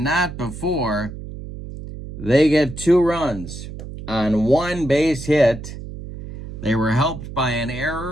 before they get 2 runs on 1 base hit. They were helped by an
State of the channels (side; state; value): right; noise; hum, 11 dB below the sound